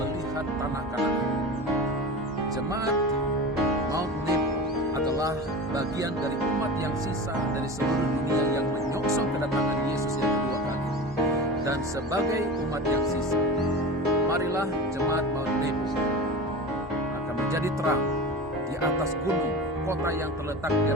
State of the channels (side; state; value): both; normal; correlation 0.30